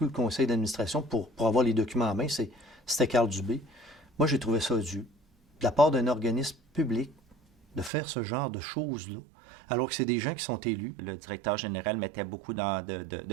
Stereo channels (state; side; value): drops out; left; at 7.9 s